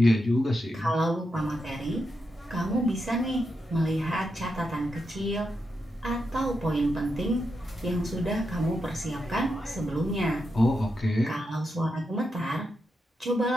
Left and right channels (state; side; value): normal; both; correlation 0.85